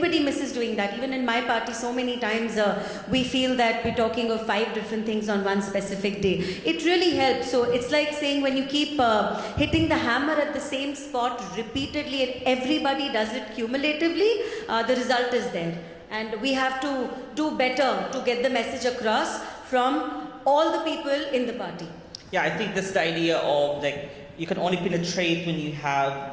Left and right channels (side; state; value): both; identical; correlation 1.00